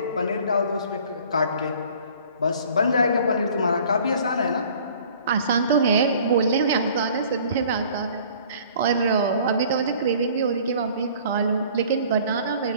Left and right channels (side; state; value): both; inverted; correlation -0.51